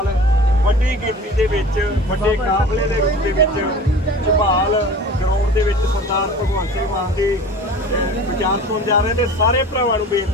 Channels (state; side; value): normal; both; correlation 0.40